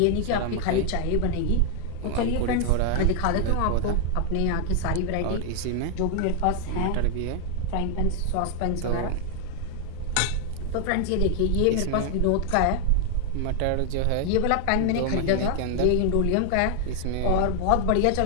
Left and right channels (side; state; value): both; different; correlation 0.00